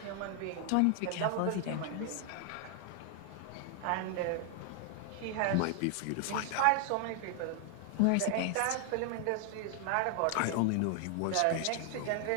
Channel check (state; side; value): different; both; correlation 0.00